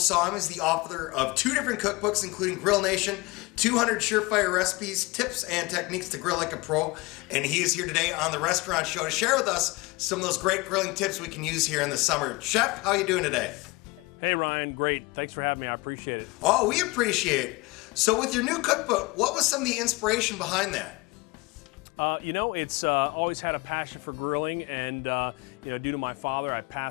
him as the author of 2 different cookbooks, including Grill Nation, 200 Surefire Recipes, Tips and Techniques to Grill Like a Pro. And he is here today on the Restaurant Show to share with us some of those great grilling tips we can use here in the summer. Chef, how are you doing today? Hey Ryan, great. Thanks for having me. I appreciate it. Oh, we appreciate it. So with your new cookbook, what was some of the inspiration behind that? It's always had a passion for grilling, and due to my father, I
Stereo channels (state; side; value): quieter; right; 24.3 dB